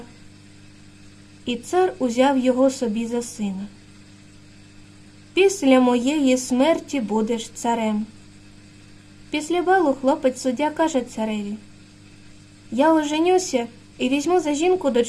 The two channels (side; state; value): both; identical; correlation 1.00